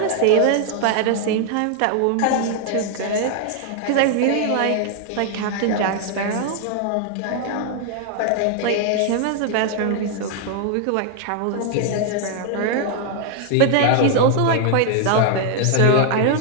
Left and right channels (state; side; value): different; both; correlation 0.00